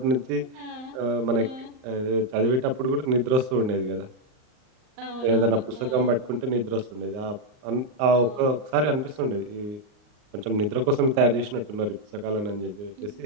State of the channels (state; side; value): late; left; 39 ms